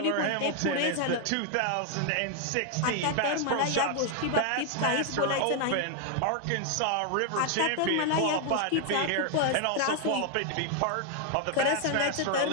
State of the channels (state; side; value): different; both; correlation 0.00